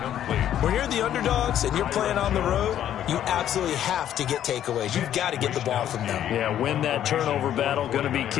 When you're the underdogs and you're playing on the road, you absolutely have to get takeaways. You've got to get the ball from them. Yeah, win that turnover battle, going to be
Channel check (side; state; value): right; quieter; 10.9 dB